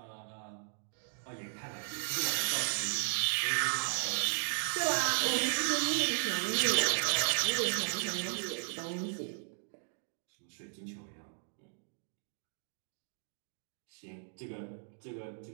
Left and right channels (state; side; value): silent; left; digital silence